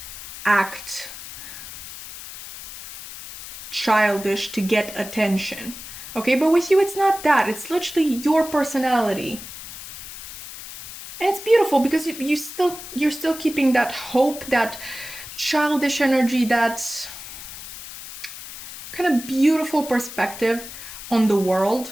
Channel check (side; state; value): left; noise; hiss, 12 dB below the sound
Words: act childish to get attention. Okay, but with you it's not that. It's literally your personality. And it's beautiful because you're still keeping that hope, that childish energy, that kind of beautiful perspective on the